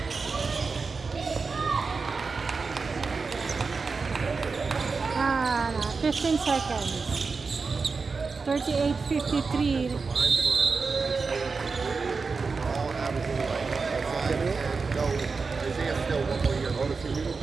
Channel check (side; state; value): left; quieter; 4.6 dB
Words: Ah, 15 seconds. 38:53. all averaging like 5. No, Isaiah's still 1 more year older than you.